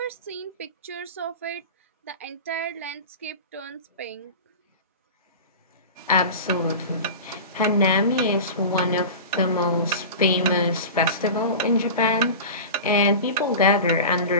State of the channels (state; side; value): inverted; both; correlation -0.31